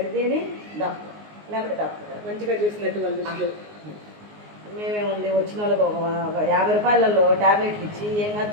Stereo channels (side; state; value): left; late; 19 ms